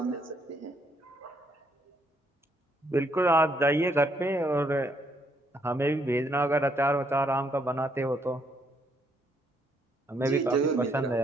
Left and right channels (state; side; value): normal; both; correlation 0.71